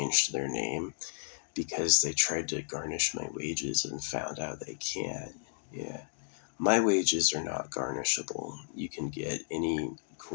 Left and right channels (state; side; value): silent; right; digital silence